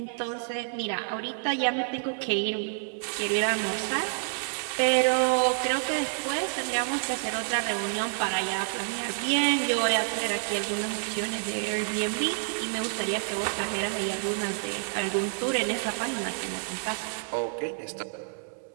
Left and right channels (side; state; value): left; silent; digital silence